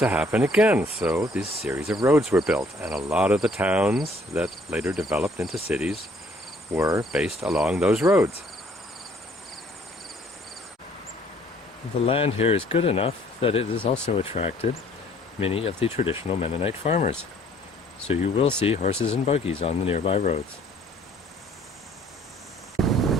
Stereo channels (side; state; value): both; normal; correlation 0.60